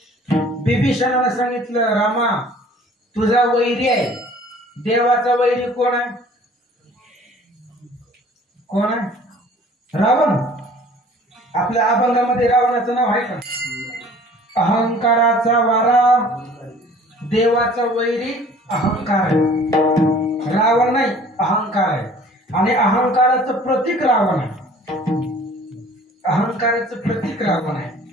बिभीषणानं सांगितलं, रामा तुझा वैरी आहे. देवाचा वैरी कोण आहे? रावण. आपल्या अभंगामध्ये रावणाचं नाव आहे का? अहंकाराचा वारा, देवाचा वैरी अहंकार आहे. रावण नाही, अहंकार आहे. आणि अहंकाराचं प्रतीक रावण आहे.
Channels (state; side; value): normal; both; correlation 0.50